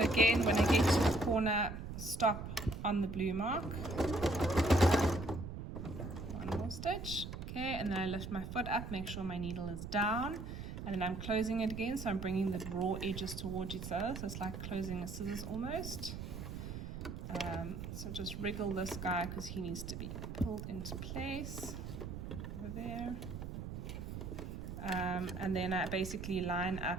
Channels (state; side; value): noise; right; rumble, 7 dB below the sound